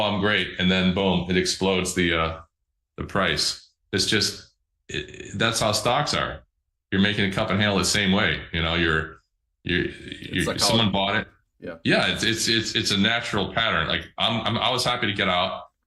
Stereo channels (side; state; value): both; identical; correlation 1.00